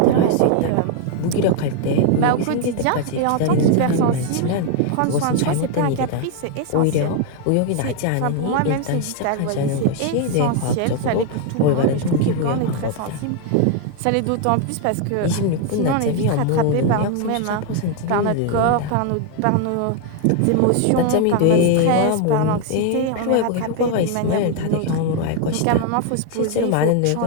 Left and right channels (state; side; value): different; both; correlation 0.00